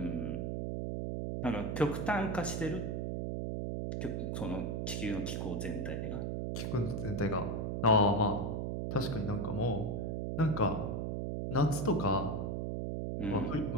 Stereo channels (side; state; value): right; noise; hum, 1 dB below the sound